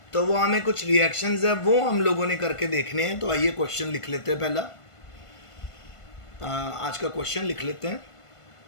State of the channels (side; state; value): right; late; 1.5 ms